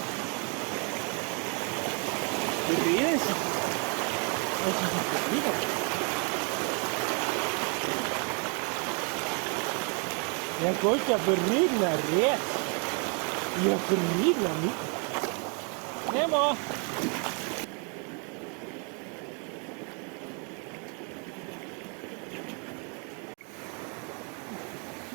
Det regnar så. Jag går inte att regna rätt. Jag regnar mycket. Det var.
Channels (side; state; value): left; quieter; 37.0 dB